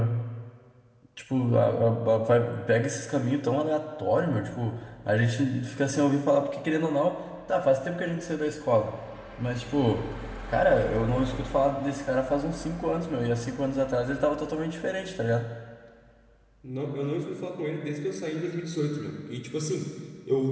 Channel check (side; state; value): both; identical; correlation 1.00